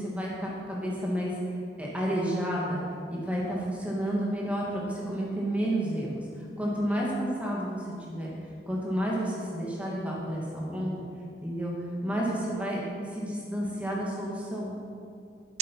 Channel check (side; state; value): both; normal; correlation 0.76